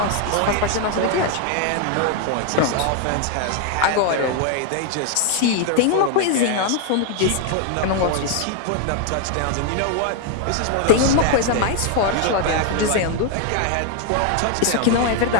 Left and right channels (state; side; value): different; both; correlation 0.00